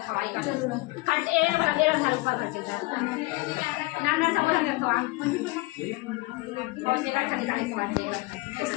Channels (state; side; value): quieter; right; 23.0 dB